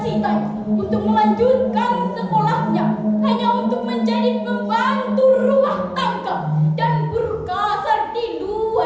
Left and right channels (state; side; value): identical; both; correlation 1.00